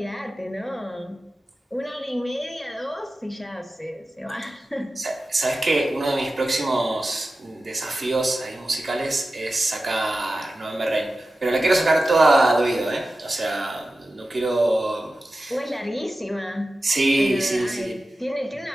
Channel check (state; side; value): normal; both; correlation 0.94